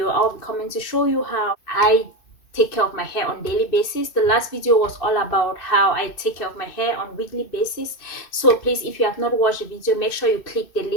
I'll be coming to show you how I take care of my hair on daily basis. The last video was all about how I take care of my hair on weekly basis. So please, if you have not watched the video, make sure you click the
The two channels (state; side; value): late; right; 2.6 ms